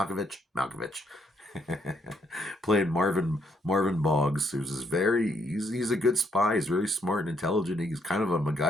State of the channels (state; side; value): normal; both; correlation 0.72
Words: playing Marvin Boggs, he's a good spy. He's very smart and intelligent. He's kind of a